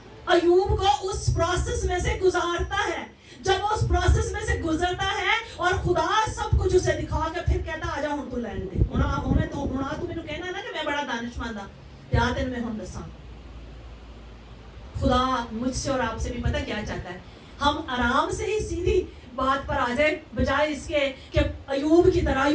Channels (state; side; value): identical; both; correlation 1.00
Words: ایوب کو اس پروسیس میں سے گزارتا ہے. جب وہ اس پروسیس میں سے گزرتا ہے اور خدا سب کچھ اسے دکھا کے پھر کہتا آجا ہوں تو لین دے، ہمیں تو مینوں کہنا نا کہ میں بڑا دانشمند ہاں، یا تین میں ہوں دساں. خدا مجھ سے اور آپ سے بھی پتہ کیا چاہتا ہے، ہم آرام سے ہی سیدھی بات پر آ جائے بجائے اس کے کہ ایوب کی طرح.